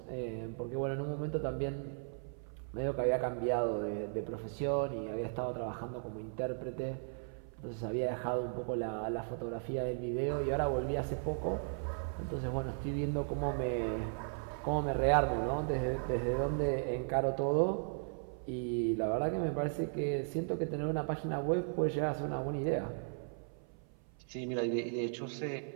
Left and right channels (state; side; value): silent; left; 53 dB below the other